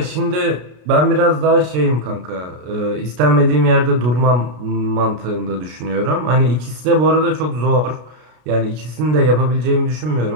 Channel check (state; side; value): late; left; 33 ms